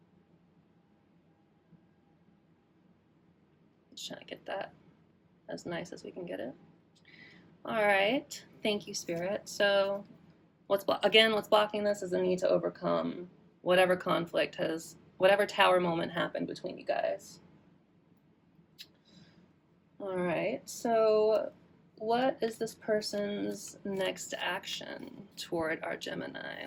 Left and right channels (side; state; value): both; identical; correlation 1.00